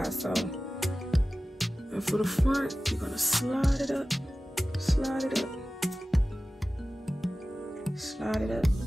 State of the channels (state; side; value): normal; both; correlation 0.96